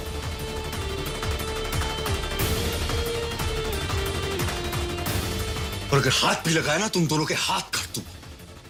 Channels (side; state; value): both; identical; correlation 1.00